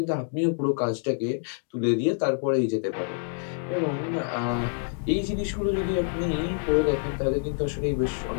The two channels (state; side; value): silent; right; digital silence